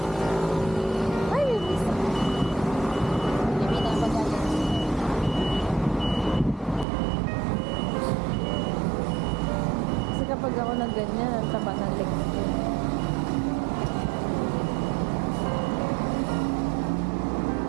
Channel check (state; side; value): drops out; left; at 6.9 s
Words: Ay, may bisa. Hindi na pag-alit. Kasi kapag ako nag ganyan, ang taba ng legs ko.